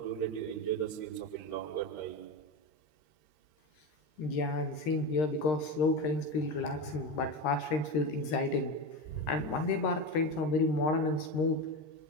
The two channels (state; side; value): late; right; 13 ms